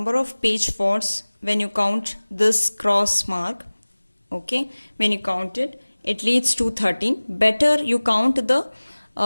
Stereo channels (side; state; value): both; inverted; correlation -1.00